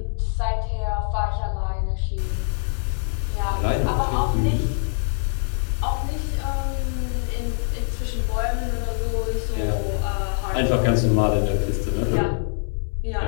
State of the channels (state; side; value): silent; right; 63 dB below the other